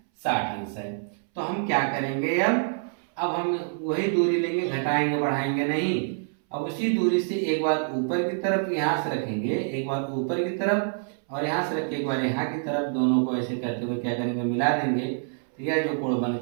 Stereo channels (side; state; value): left; silent; 61 dB below the other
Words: 60 अंश है। तो हम क्या करेंगे, अब हम वही दूरी लेंगे, घटाएंगे बढ़ाएंगे नहीं। अब उसी दूरी से एक बार ऊपर की तरफ यहाँ से रखेंगे, एक बार ऊपर की तरफ और यहाँ से रख के एक बार यहाँ की तरफ, दोनों को ऐसे करते हुए क्या करेंगे, मिला देंगे। तो यह जो कोण बन